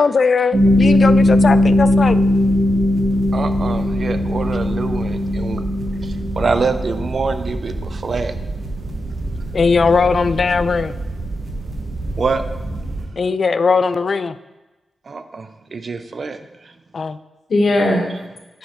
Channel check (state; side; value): normal; both; correlation 0.87